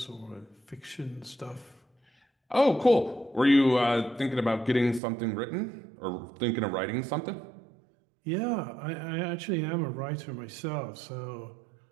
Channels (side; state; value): left; drops out; at 5.0 s